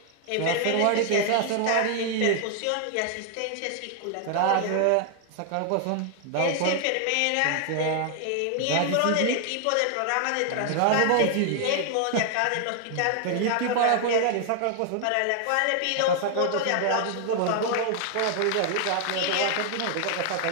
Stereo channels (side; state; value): both; different; correlation 0.00